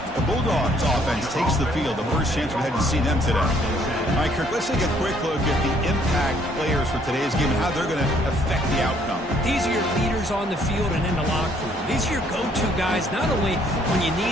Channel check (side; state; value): both; normal; correlation 0.64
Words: The Bulldogs offense takes the field. The first chance we had to see them today. All right, Kirk, let's take a quick look at the impact players for today's game and how they're going to affect the outcome. These are your leaders on the field and in the locker room. These are your go-to guys, not only when you